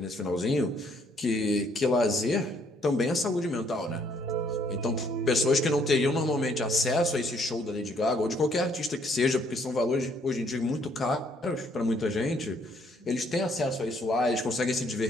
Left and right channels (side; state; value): both; normal; correlation 0.66